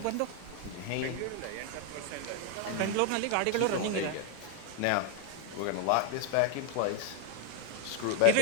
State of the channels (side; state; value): both; different; correlation 0.00